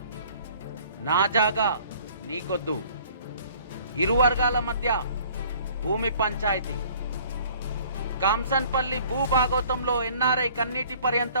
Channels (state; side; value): inverted; both; correlation -0.53